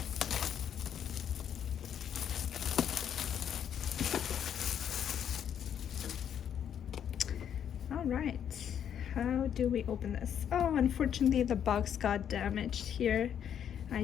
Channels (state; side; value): quieter; right; 9.0 dB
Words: All right. How do we open this? Oh, unfortunately the box got damaged here.